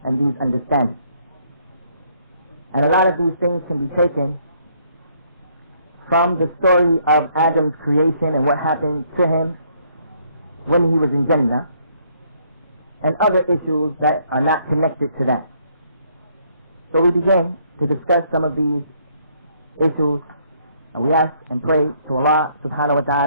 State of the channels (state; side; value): inverted; both; correlation -0.68